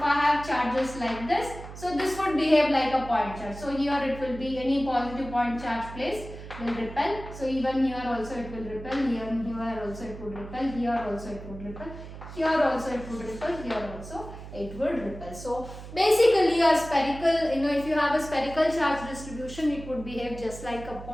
have charges like this, so this would behave like a point charge. So here it will be any positive point charge placed will repel. So even here also it will repel, here also it would repel, here also it would repel, here also it would repel, here also it would repel. So basically a spherical, if you have a spherical charge distribution, it would behave just like a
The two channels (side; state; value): right; noise; hum, 13 dB below the sound